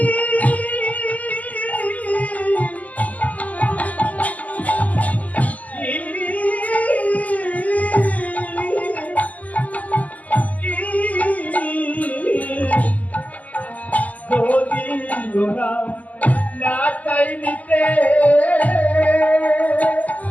না চাই নিতে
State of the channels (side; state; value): right; late; 0.076 ms